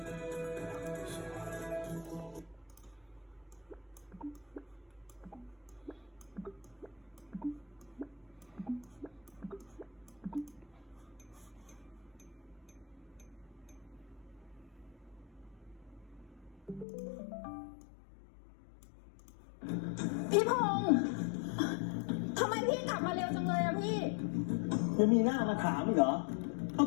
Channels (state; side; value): drops out; right; at 16.9 s